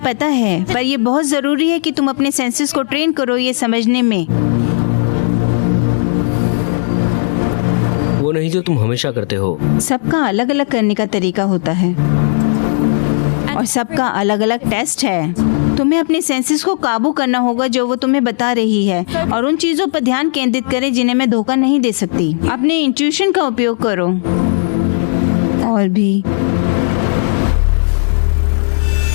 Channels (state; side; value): silent; right; 67 dB below the other